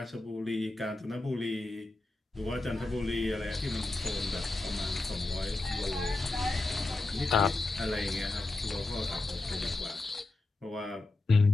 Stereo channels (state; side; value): quieter; right; 3.0 dB